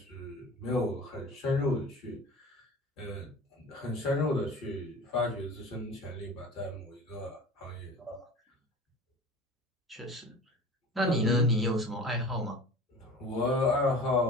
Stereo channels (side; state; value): both; normal; correlation 0.39